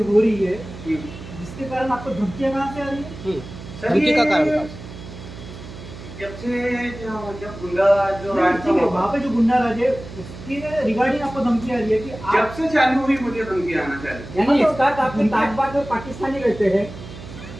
हो रही है हम्म। जिसके कारण आपको धमकियां कहाँ से आ रही है? सर, धमकी का कारण था? जब से जब गुंडा जो राज था वहाँ पे जो गुंडा राज है उसके रिगार्डिंग आपको धमकी आ रही है कि जब आप, से चालू हुई मुझे धमकी आना चालू। यानी इसका आपके ताजबाद में पाकिस्तानी रहते हैं।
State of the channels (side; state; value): right; noise; hum, 14 dB below the sound